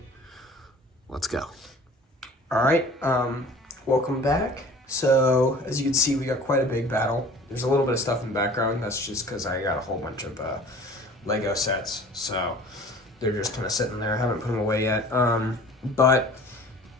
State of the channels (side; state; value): both; normal; correlation 0.46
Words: Let's go. Alright, welcome back. So, as you can see, we got quite a big battle. There's a little bit of stuff in the background. That's just because I got a whole bunch of Lego sets. So, they're just kind of sitting there. I haven't put them away yet. And